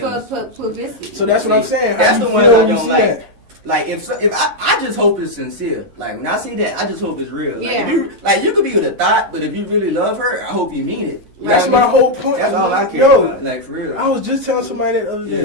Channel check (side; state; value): left; late; 11 ms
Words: else? for publicity. So that's what I'm saying. How That's you the ones feel I when you don't see like. that? Like if I just hope it's sincere. Like when I see that, I just hope it's real. Like, Yeah. you could be with a thought, but if you really love her, I hope you mean it. You know That's what I my mean? whole point. That's all I care Yo, about. Like for real. I was just telling somebody that the other